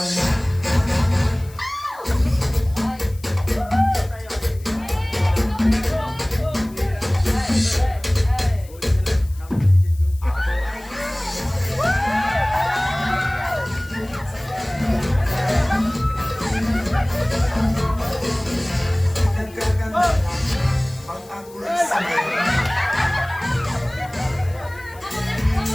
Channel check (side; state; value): left; noise; hiss, 23 dB below the sound